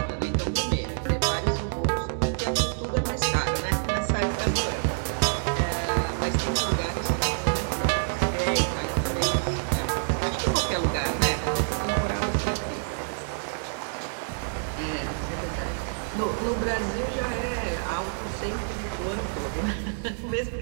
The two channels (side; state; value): left; silent; digital silence